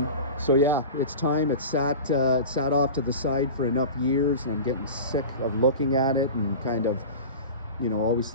So yeah, it's time. It sat off to the side for enough years, and I'm getting sick of looking at it and kind of, you know, always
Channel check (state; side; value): inverted; both; correlation -0.32